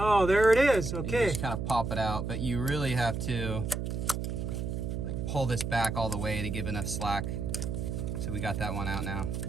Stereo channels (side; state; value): right; noise; hum, 3 dB below the sound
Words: there it is. Okay. You just kind of pop it out, but you really have to like pull this back all the way to give enough slack. So we got that one out now.